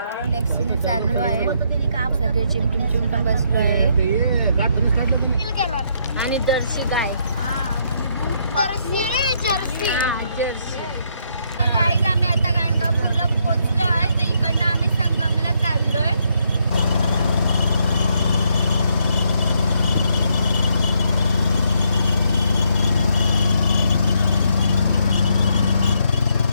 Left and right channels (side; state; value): both; inverted; correlation -0.74